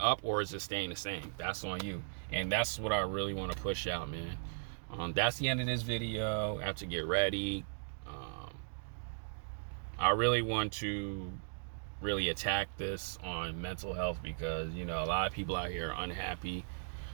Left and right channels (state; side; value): silent; left; digital silence